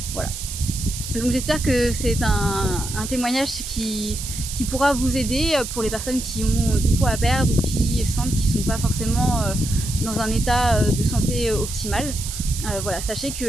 Voilà. Donc j'espère que c'est un témoignage qui pourra vous aider pour les personnes qui ont du poids à perdre ou qui sentent qu'ils ne sont pas forcément dans un état de santé optimal. Voilà, sachez que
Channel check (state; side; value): noise; right; hiss, 8 dB below the sound